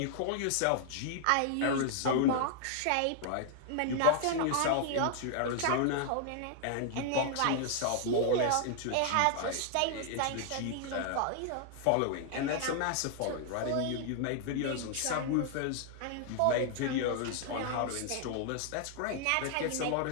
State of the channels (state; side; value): different; both; correlation 0.00